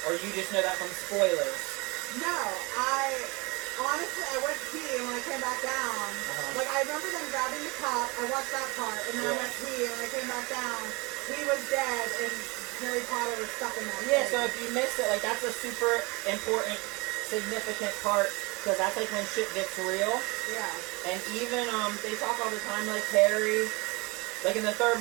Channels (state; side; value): quieter; left; 26.6 dB